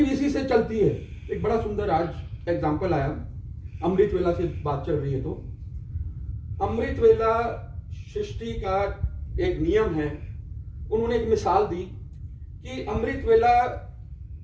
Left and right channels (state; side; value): identical; both; correlation 1.00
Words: इसी से चलती है। एक बड़ा सुंदर आज एग्जाम्पल आया, अमृत वेला से बात चल रही है तो अमृत वेला सृष्टि का एक नियम है। उन्होंने एक मिसाल दी कि अमृत वेला,